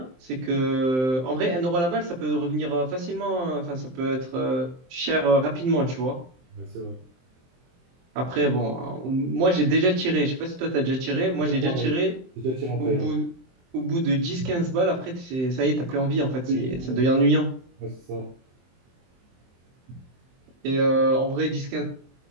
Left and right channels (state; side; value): late; left; 23 ms